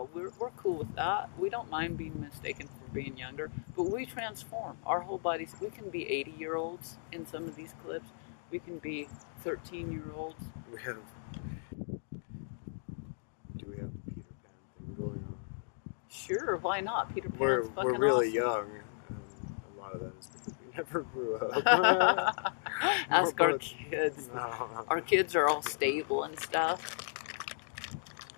cool with that. We don't mind being mistaken for being younger. But we transform. Our whole bodies, we can be 80-year-olds in some of these clips. We can be 13-year-olds. we have. Do we have the Peter Pan thing going on? Sure, why not? Peter Pan's We're fucking really awesome. young. And a lot of that is because we never grew up. Ask our kids. No. Our kids are all stable and stuff.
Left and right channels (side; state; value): right; silent; digital silence